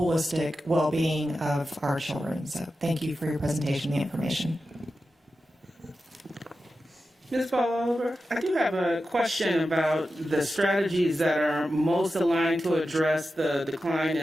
well-being of our children. So thank you for your presentation and the information. Ms. Paul, I do have a question about the strategies that are most aligned to address the decline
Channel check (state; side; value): normal; both; correlation 0.92